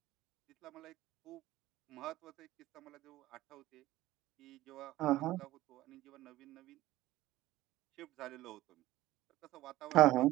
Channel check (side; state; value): left; quieter; 16.3 dB